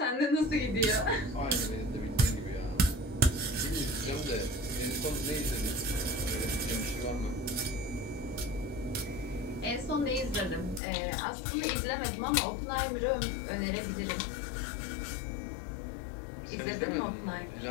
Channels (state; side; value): drops out; right; at 10.8 s